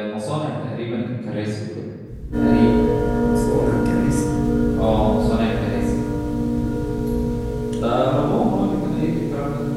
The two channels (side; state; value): both; identical; correlation 1.00